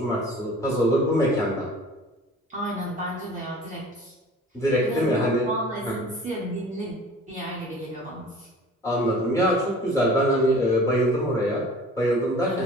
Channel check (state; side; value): normal; both; correlation 0.45